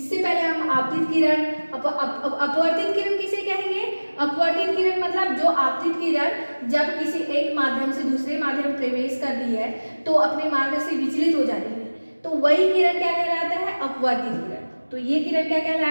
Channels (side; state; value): both; inverted; correlation -1.00